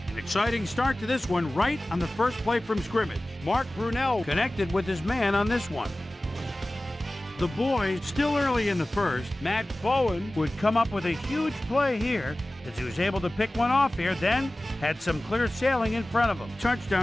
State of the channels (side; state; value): both; normal; correlation 0.97